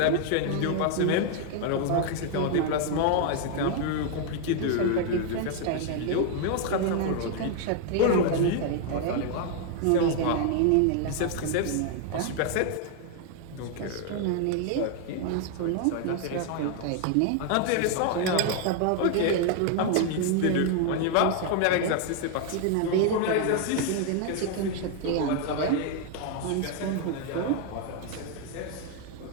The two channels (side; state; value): both; different; correlation 0.00